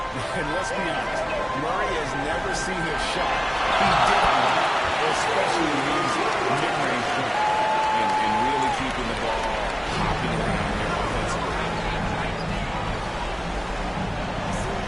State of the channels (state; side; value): identical; both; correlation 1.00